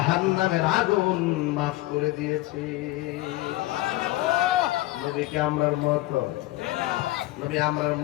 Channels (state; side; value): quieter; right; 17.7 dB